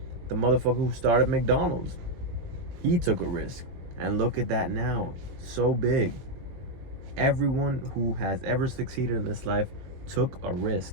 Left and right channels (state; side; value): late; left; 21 ms